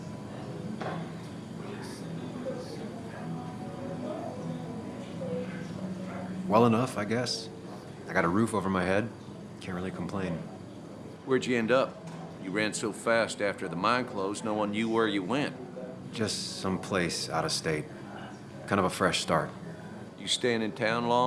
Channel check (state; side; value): identical; both; correlation 1.00